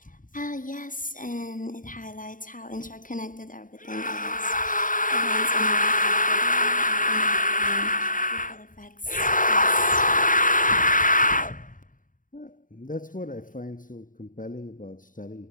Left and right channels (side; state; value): right; late; 0.39 ms